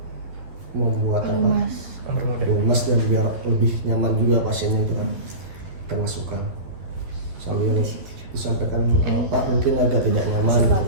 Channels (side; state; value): left; late; 12 ms